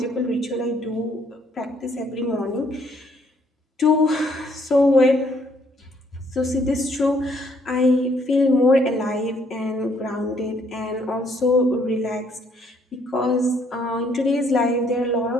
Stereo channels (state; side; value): normal; both; correlation 0.67